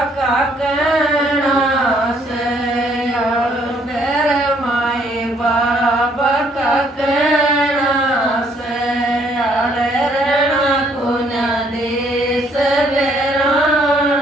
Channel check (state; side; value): normal; both; correlation 0.66